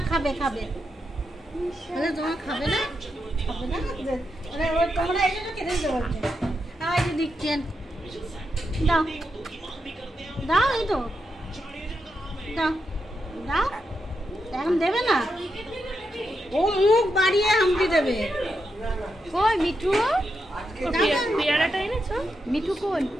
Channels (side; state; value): both; normal; correlation 0.85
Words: খাবে খাবে তোমার খাবে না খাবে না তোমরা এই জন্য খেতে দিতে বলছে এই যে দিচ্ছেন দাও দাও এই তো দাও দাও এখন দেবে না ও মুখ বাড়িয়ে হামটি দেবে কই মিঠু পেয়ারাটা এনেছো মিঠু কই